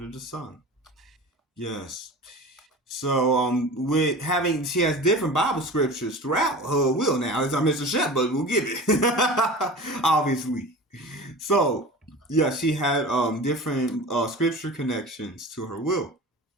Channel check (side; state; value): both; normal; correlation 0.35